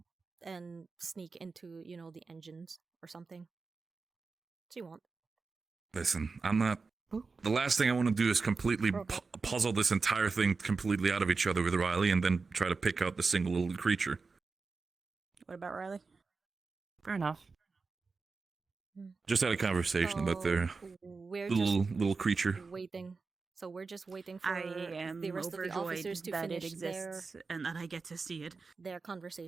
and sneak into, the engines or something. She won't. Listen, I'm not... The last thing I want to do is completely puzzle this entire thing completely out of each other with Riley and then try to pick out the single little creature. What about Riley? Fair enough. Just had a conversation about their little creature. Waiting. So we're just waiting for I am the rest of the officers to that finish it exists and that I get to see it. Their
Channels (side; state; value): left; quieter; 4.4 dB